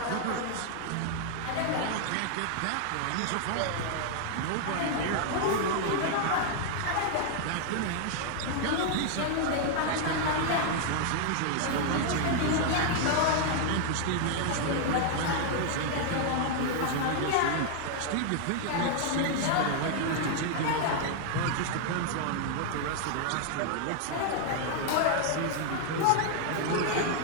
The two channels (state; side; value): different; both; correlation 0.00